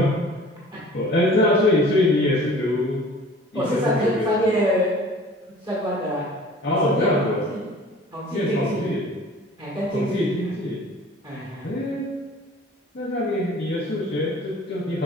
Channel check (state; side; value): normal; both; correlation 0.47